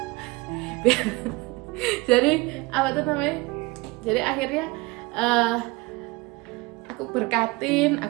Jadi apa tuh namanya, jadi akhirnya aku berkatin,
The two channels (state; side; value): quieter; left; 23.7 dB